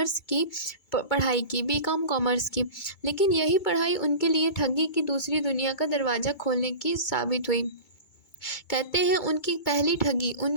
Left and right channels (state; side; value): late; right; 2.2 ms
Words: की पढ़ाई की, बीकॉम कॉमर्स की। लेकिन यही पढ़ाई उनके लिए ठगी की दूसरी दुनिया का दरवाज़ा खोलने की साबित हुई। कहते हैं उनकी पहली ठगी